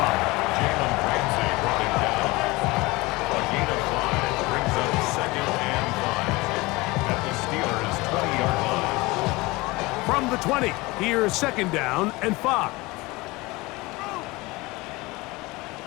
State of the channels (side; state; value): right; quieter; 22.5 dB